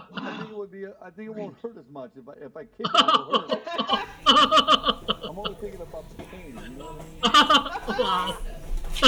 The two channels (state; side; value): identical; both; correlation 1.00